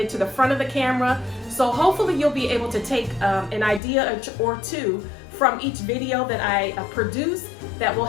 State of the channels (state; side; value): drops out; right; at 3.8 s